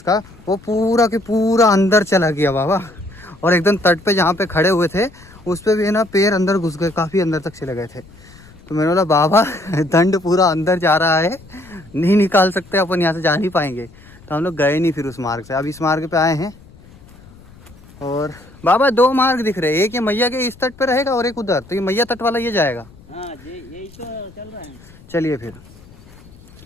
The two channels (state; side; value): noise; left; rumble, 23 dB below the sound